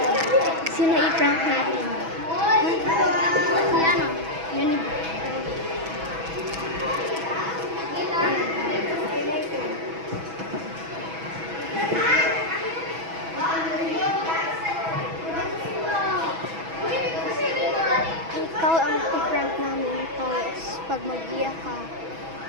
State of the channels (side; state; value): left; late; 6.1 ms